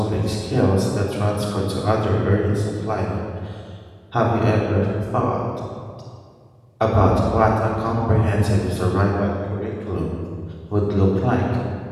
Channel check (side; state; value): both; identical; correlation 1.00